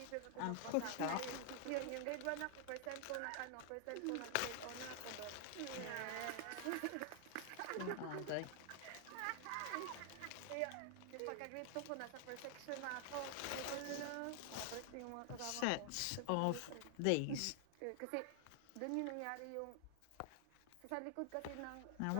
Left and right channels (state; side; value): different; both; correlation 0.00